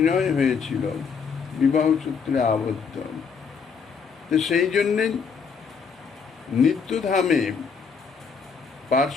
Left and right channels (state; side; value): quieter; right; 5.9 dB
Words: হয়েছিল, বিবাহ সূত্রে আবদ্ধ। তো সেই জন্যে নিত্যধামে